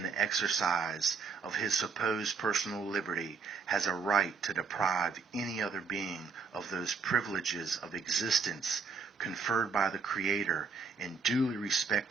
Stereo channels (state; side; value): quieter; left; 5.0 dB